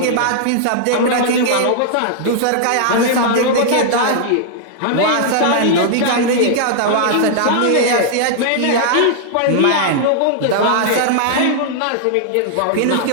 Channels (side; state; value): both; different; correlation -0.01